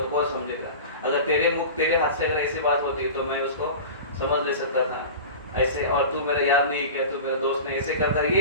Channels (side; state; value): both; inverted; correlation -0.33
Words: कौन समझेगा। अगर तेरे हाथ से अगर ऐसी बात होती तो मैं उसको समझ ले सकता था ऐसे, और तू मेरा यार नहीं किया, तू मेरे दोस्त ने ऐसे करता,